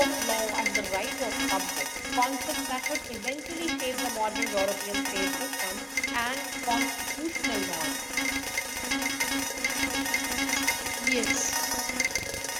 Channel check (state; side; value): identical; both; correlation 1.00